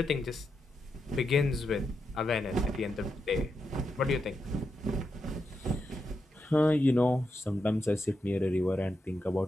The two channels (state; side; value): normal; both; correlation 0.85